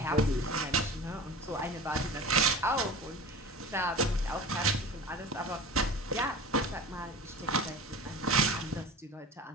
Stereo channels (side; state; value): both; normal; correlation 0.35